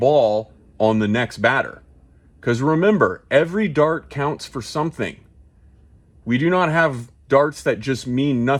on the next batter. Because remember, every dart counts for something. We do not have darts that just mean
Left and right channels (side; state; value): both; identical; correlation 1.00